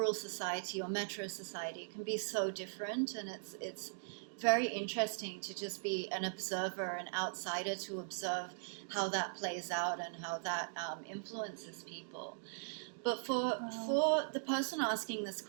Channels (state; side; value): silent; left; digital silence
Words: society or metro society. It can be so different, and it's very interesting to just be an observer, an outsider, to observe how that plays out and how that influences people. But for the person asking this